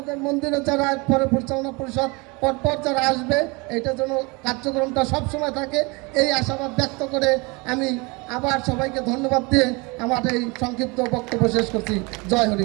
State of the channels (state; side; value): quieter; left; 27.3 dB